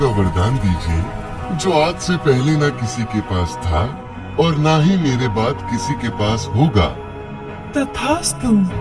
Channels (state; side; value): identical; both; correlation 1.00